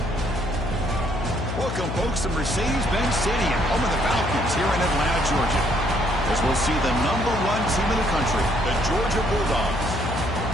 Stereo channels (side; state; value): left; noise; hum, 4 dB below the sound